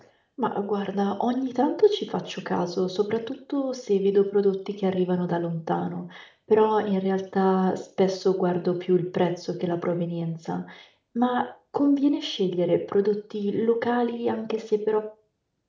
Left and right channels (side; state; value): both; identical; correlation 1.00